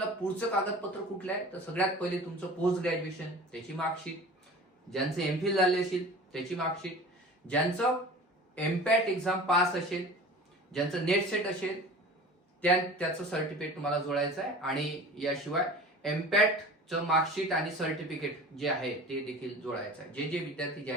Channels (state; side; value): normal; both; correlation 0.39